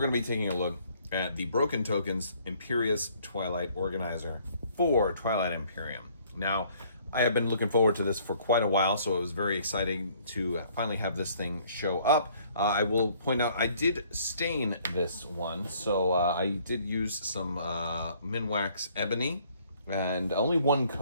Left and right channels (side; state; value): both; inverted; correlation -0.61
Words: to be taking a look at the Broken Tokens Imperious Twilight Organizer for Twilight Imperium. Now, I have been looking forward to this for quite a while, so it was very exciting to finally have this thing show up. I will point out I did stain this one, so I did use some Minwax Ebony and only one